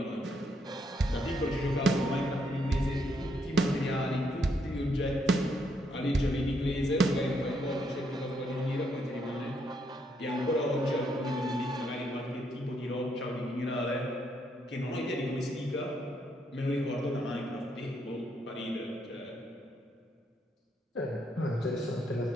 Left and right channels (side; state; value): both; normal; correlation 0.75